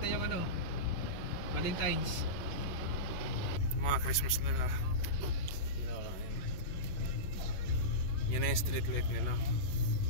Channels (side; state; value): right; late; 11 ms